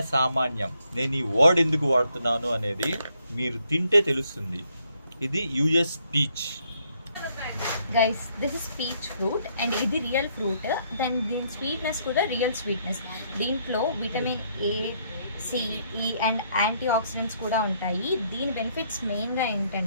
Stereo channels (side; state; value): both; inverted; correlation -0.71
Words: సామాన్యం. నేను ఈ వర్డ్ ఎందుకు వాడుతున్నాను అనేది మీరు తింటే తెలుస్తుంది. ఇది US peach. Guys, this is peach fruit and ఇది రియల్ ఫ్రూట్. దెన్ దీని స్వీట్నెస్ కూడా రియల్ స్వీట్నెస్. దీంట్లో విటమిన్ ఏ, సి, ఈ అండ్ యాంటీ ఆక్సిడెంట్స్ కూడా ఉంటాయి. దీని బెనిఫిట్స్ మెయిన్గా